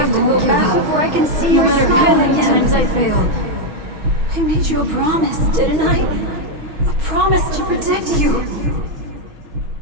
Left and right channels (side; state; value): left; late; 6.3 ms